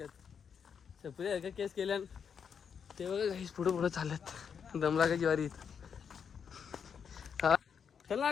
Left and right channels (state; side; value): quieter; right; 7.0 dB